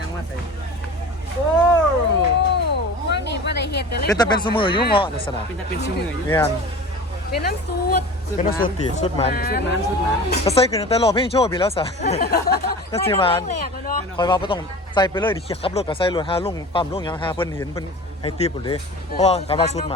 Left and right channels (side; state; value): both; normal; correlation 0.37